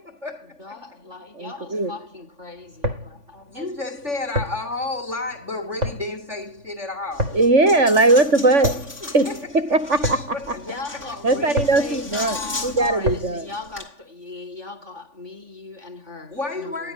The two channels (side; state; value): left; late; 3.5 ms